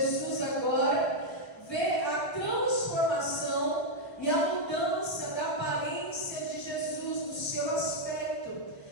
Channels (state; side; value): late; right; 1.0 ms